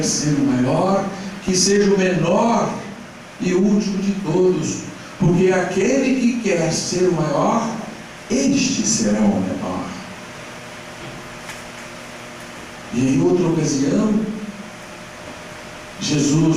ser o maior, que seja o menor e o último de todos. Porque aquele que quer ser o maior, este será o menor. E em outra ocasião,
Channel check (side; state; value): both; identical; correlation 1.00